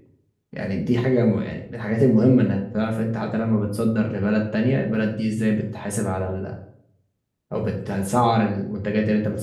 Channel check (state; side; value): identical; both; correlation 1.00